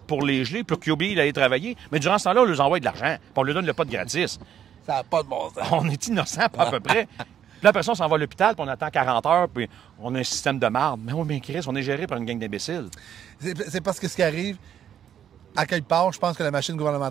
pour les geler, pour qu'ils oublient d'aller travailler, mais durant ce temps-là, on leur envoie de l'argent, puis on leur donne le pot gratis. Ça n'a pas de bon sens. On est innocents, pas à peu près. Puis là, après ça, on s'en va à l'hôpital, puis on attend 40 heures, puis on a un système de marde. Mais oui, mais Chris, on est géré par une gang d'imbéciles. C'est parce que ce qui arrive, à quelque part, je pense que la machine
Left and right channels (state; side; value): quieter; left; 9.6 dB